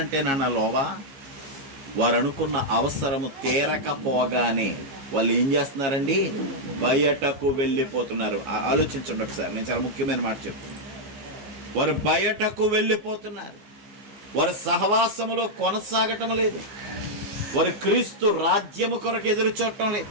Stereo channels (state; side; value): late; left; 15 ms